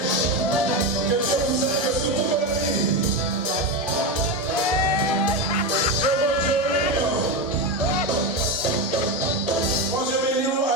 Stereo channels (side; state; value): both; normal; correlation 0.14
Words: que Dieu vous aide.